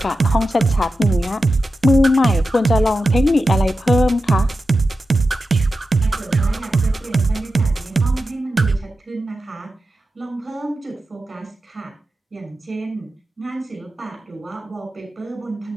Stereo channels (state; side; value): normal; both; correlation 0.91